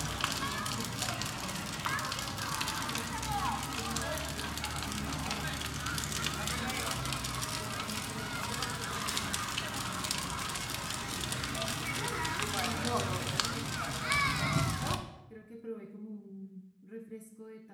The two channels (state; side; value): identical; both; correlation 1.00